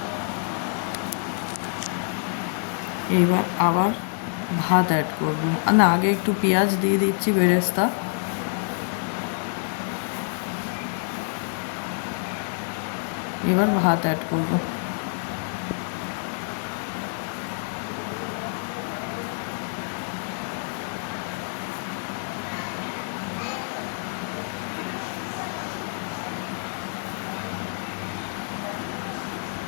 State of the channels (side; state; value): right; silent; digital silence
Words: এইবার আবার ভাত অ্যাড করবো, না আগে একটু পেঁয়াজ দিয়ে দিচ্ছি বেরেস্তা, এবার ভাত অ্যাড করবো।